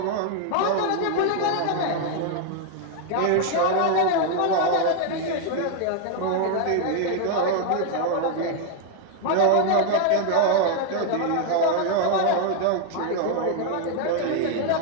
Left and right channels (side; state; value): both; different; correlation 0.00